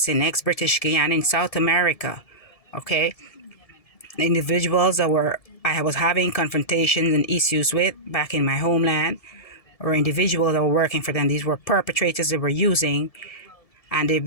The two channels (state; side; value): late; right; 1.7 ms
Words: in ex-British Guyana in South America. Okay, the individuals that I was having confrontations and issues with back in my homeland, or individuals that were working for them. These were perpetrators they were using, and they've